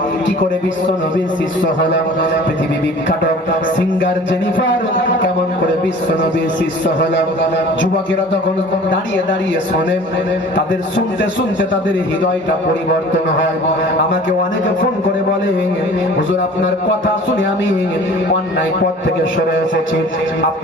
কি করে বিশ্ব নবীর শিষ্য হলো? পৃথিবী বিখ্যাত সিঙ্গার জেনিফার কেমন করে বিশ্ব নবীর শিষ্য হলো? যুবকেরা তখন দাঁড়িয়ে দাঁড়িয়ে শোনে, তাদের শুনতে শুনতে তাদের হৃদয়টা পরিবর্তন হয়। আমাকে অনেকে ফোন করে বলে, হুজুর আপনার কথা শুনে আমি অন্যায় পথ থেকে সরে এসেছি,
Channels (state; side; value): normal; both; correlation 0.45